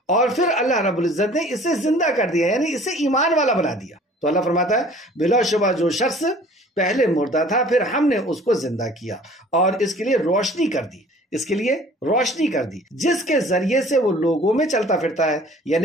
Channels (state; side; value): normal; both; correlation 0.50